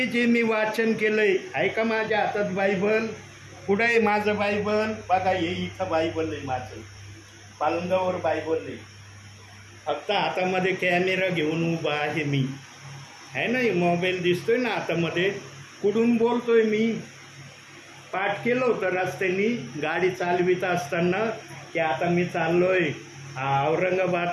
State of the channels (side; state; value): both; identical; correlation 1.00